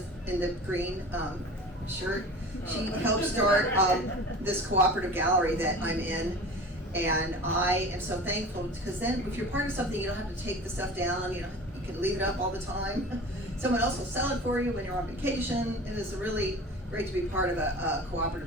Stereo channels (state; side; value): normal; both; correlation 0.38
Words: in the green shirt. She helped start this cooperative gallery that I'm in, and I am so thankful, because then if you're part of something, you don't have to take the stuff down. You can leave it up all the time. Someone else will sell it for you when you're on vacation. It is really great to be part of a